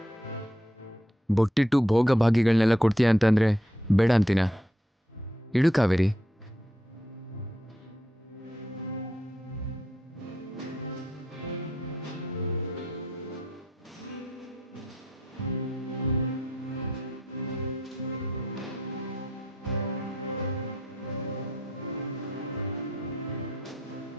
ಬೊಟ್ಟಿಟ್ಟು ಭೋಗ ಭಾಗಿಗಳನ್ನೆಲ್ಲ ಕೊಡ್ತೀಯ ಅಂತಂದ್ರೆ ಬೇಡ ಅಂತೀನ. ಇಡು ಕಾವೇರಿ.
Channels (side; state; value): both; normal; correlation 0.76